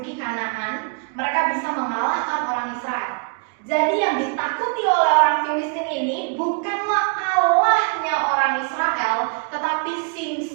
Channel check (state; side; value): quieter; left; 39.5 dB